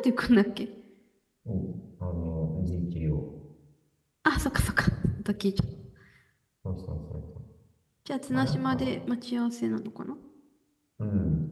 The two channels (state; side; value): identical; both; correlation 1.00